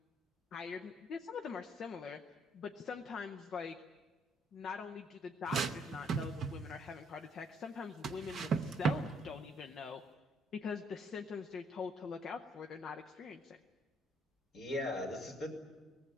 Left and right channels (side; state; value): both; normal; correlation 0.68